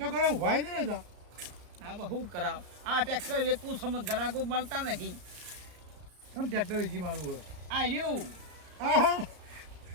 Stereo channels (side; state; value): left; late; 33 ms